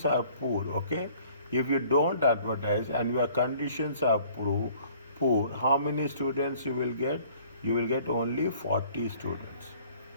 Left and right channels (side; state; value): both; inverted; correlation -0.55